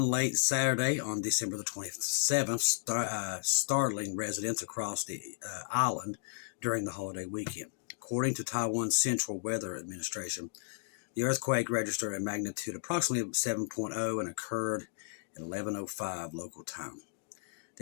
late Saturday on December the 27th, startling residents across the island during the holiday weekend. According to Taiwan's Central Weather Administration, the earthquake registered a magnitude approximately 7.0 and occurred at 11:05 local time.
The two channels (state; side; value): silent; right; digital silence